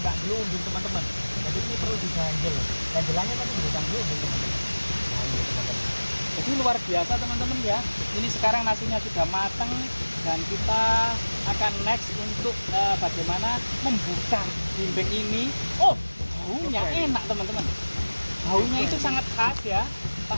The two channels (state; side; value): inverted; both; correlation -1.00